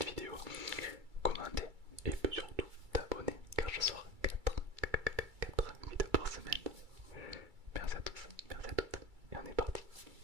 vidéo, commenter et surtout t'abonner car je sors 4 vidéos par semaine. Merci à tous, merci à toutes et on est parti.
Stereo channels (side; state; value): left; late; 2.3 ms